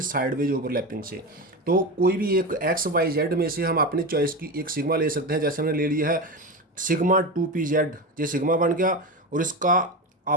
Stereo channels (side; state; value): both; normal; correlation 0.21